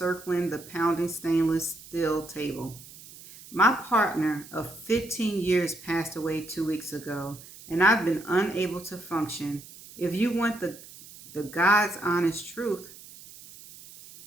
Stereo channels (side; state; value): right; noise; hiss, 18 dB below the sound